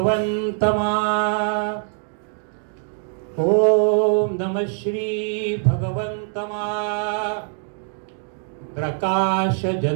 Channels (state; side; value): silent; left; 62 dB below the other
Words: ओम नमः श्री भगवंतमा. प्रकाश